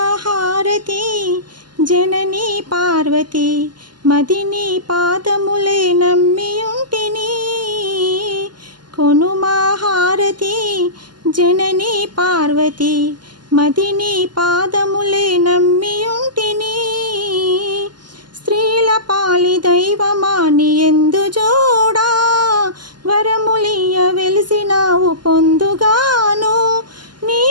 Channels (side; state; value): left; late; 0.71 ms